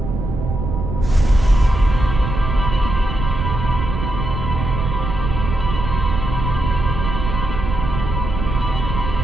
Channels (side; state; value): right; noise; rumble, 4 dB below the sound